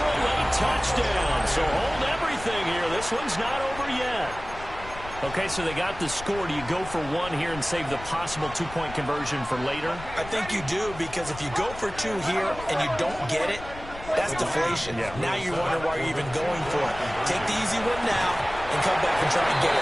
a late touchdown. So hold everything here. This one's not over yet. Okay, so they got the score. Do you go for one here and save the possible 2-point conversion for later? I think you do, because if you go for 2 here and you don't get it, that's deflation. Yeah. Now you wonder why you're even going for it. Take the easy one now and come back and try and get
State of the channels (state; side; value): noise; left; rumble, 14 dB below the sound